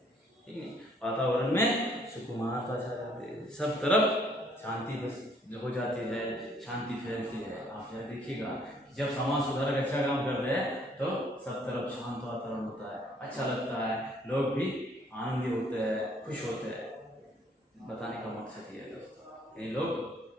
ठीक है, वातावरण में सुकून आता जाते हैं, सब तरफ शांति बस हो जाती है, शांति फैलती है। आप यह देखिएगा जब समाज सुधारक अच्छा काम करते हैं तो सब तरफ शांत वातावरण होता है, अच्छा लगता है, लोग भी आनंदी होते हैं, खुश होते हैं। बताने का मकसद ये है दोस्तों, ये लोग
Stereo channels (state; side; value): normal; both; correlation 0.63